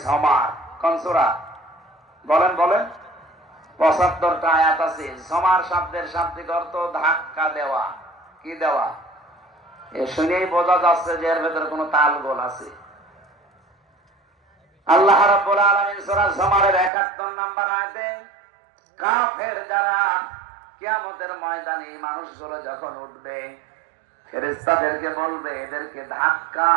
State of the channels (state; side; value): drops out; left; at 16.9 s